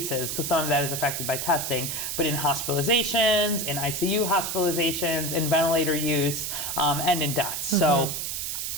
because some of that is affected by testing, but in hospitalizations, in ICU hospitalizations, in ventilator use, and in deaths. So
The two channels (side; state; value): right; noise; hiss, 3 dB below the sound